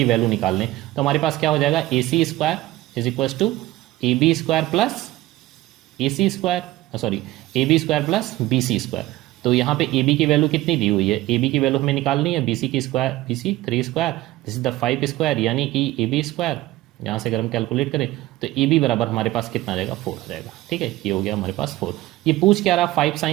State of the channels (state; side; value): quieter; left; 16.9 dB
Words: वैल्यू निकाल लें, तो हमारे पास क्या हो जाएगा AC² is equals to AB² plus AB² plus BC²। तो यहाँ पे AB की वैल्यू कितनी दी हुई है, AB की वैल्यू हमें निकालनी है BC 3², दिस इज द 5², यानी कि AB², यहाँ से अगर हम कैलकुलेट करें तो AB बराबर हमारे पास कितना आ जाएगा 4 आ जाएगा, ठीक है। ये हो गया हमारे पास 4। ये पूछ क्या रहा 5